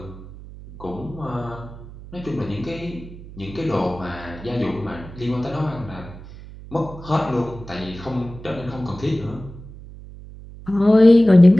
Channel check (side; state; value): right; noise; hum, 16 dB below the sound